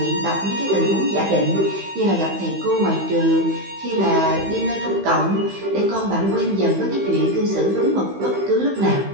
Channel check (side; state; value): left; late; 15 ms